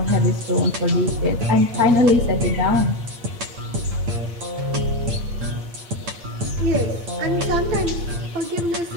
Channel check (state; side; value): late; left; 8.8 ms